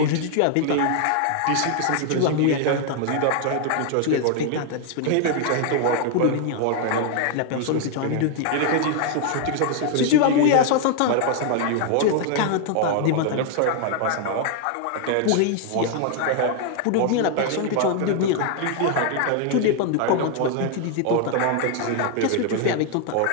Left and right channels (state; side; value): different; both; correlation 0.00